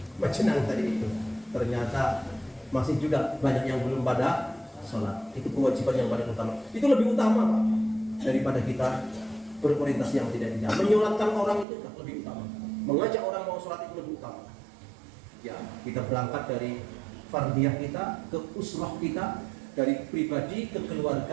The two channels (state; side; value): drops out; left; at 11.7 s